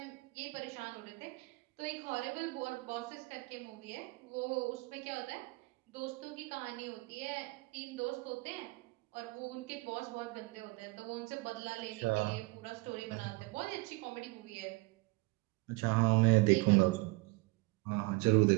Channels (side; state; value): left; quieter; 24.4 dB